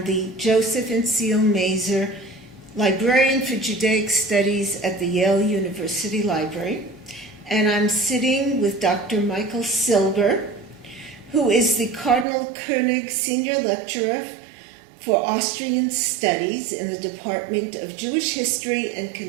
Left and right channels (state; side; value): drops out; left; at 12.2 s